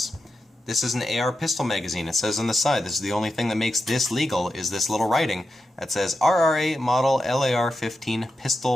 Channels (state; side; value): normal; both; correlation 0.89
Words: This is an AR pistol magazine. It says on the side, this is the only thing that makes this legal, is this little writing that says RRA Model LAR 15